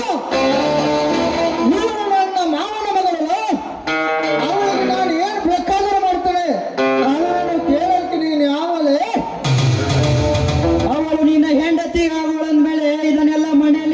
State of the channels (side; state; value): both; identical; correlation 1.00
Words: ನೀನು ನನ್ನ ಮಾವನ ಮಗಳಲ್ಲ. ಅವಳಿಗೆ ನಾನು ಏನು ಬೇಕಾದರೂ ಮಾಡ್ತೇನೆ. ಅವಳನ್ನು ಕೇಳಲಿಕ್ಕೆ ನೀನು ಯಾವಲೇ? ಅವಳು ನಿನ್ನ ಹೆಂಡತಿ ಅವಳಂದ್ಮೇಲೆ ಇದನ್ನೆಲ್ಲ